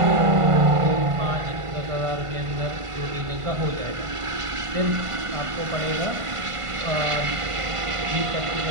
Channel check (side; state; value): left; late; 1.5 ms